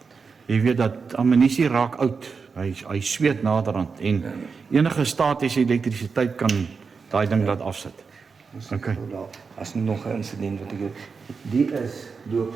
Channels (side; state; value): left; quieter; 5.2 dB